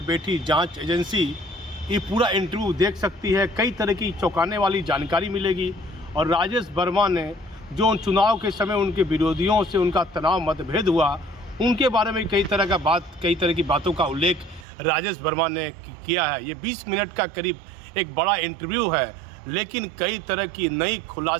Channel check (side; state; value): left; drops out; at 14.7 s